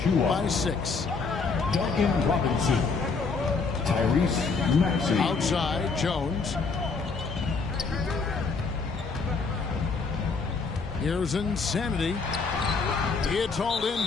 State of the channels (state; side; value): quieter; right; 4.6 dB